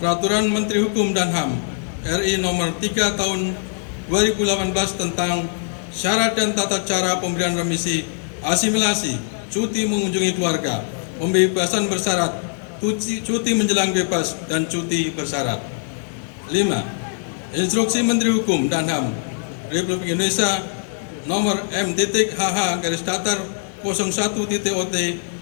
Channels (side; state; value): right; silent; digital silence